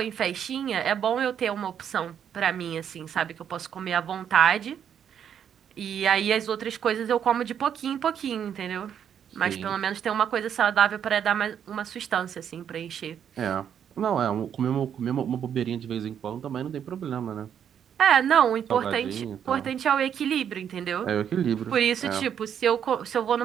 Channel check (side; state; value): left; quieter; 8.7 dB